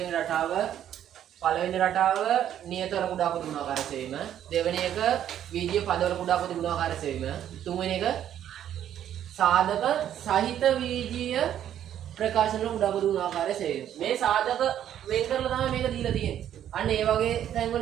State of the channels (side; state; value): left; quieter; 10.6 dB